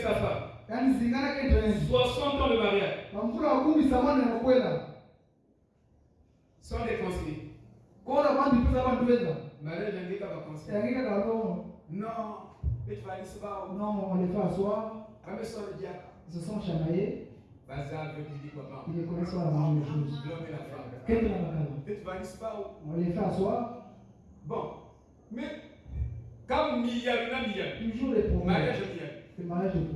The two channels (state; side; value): identical; both; correlation 1.00